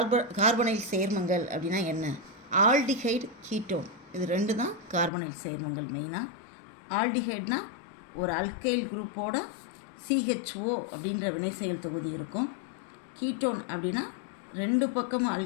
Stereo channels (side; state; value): right; drops out; at 5.1 s